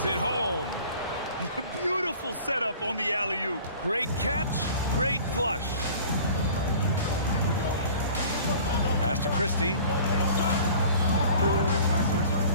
it home. Beautiful setup on the alley-oop. Great catch, great flush. Pass to Christie.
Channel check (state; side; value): inverted; both; correlation -0.46